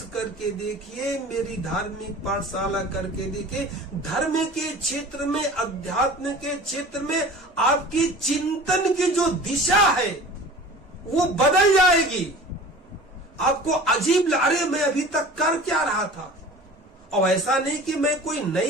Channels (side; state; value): both; normal; correlation 0.41